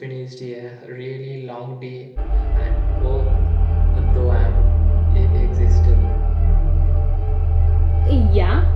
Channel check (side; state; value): both; identical; correlation 1.00